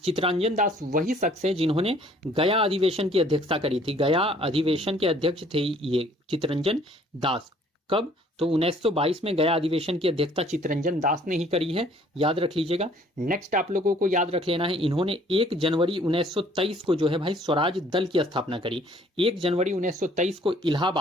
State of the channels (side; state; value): both; normal; correlation 0.58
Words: चितरंजन दास वही शख्स है जिन्होंने गया अधिवेशन की अध्यक्षता करी थी। गया अधिवेशन के अध्यक्ष थे ये चितरंजन दास। कब? तो 1922 में गया अधिवेशन की अध्यक्षता चितरंजन दास ने ही करी है, याद रख लीजिएगा। नेक्स्ट आप लोगों को याद रख लेना है, इन्होंने 1 जनवरी 1923 को जो है भाई स्वराज दल की स्थापना करी। 1 जनवरी 1923 को